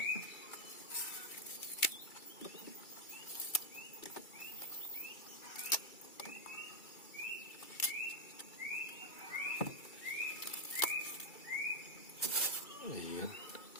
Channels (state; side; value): late; right; 2.3 ms